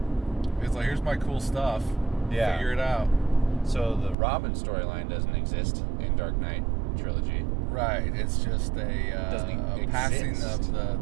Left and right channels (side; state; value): left; drops out; at 4.2 s